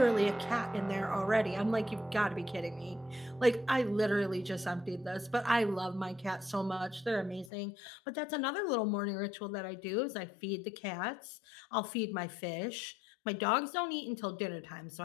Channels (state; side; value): drops out; right; at 7.5 s